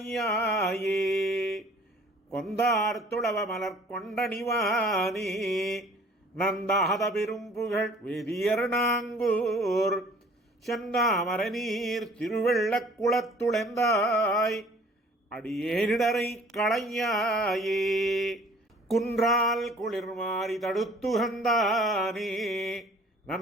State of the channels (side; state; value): both; normal; correlation 0.53